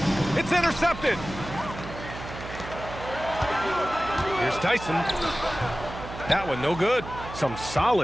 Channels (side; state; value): right; noise; hum, 11 dB below the sound